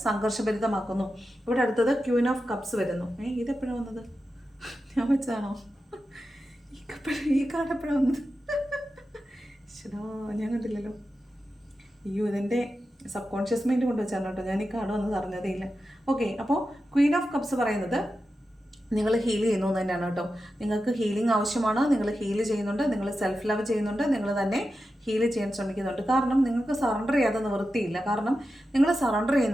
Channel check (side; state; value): both; normal; correlation 0.91